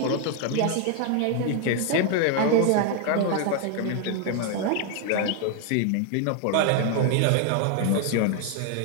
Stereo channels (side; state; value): both; different; correlation 0.00